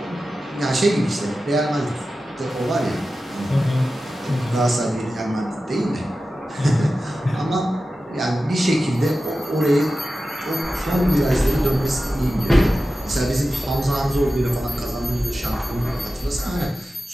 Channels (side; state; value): both; normal; correlation 0.94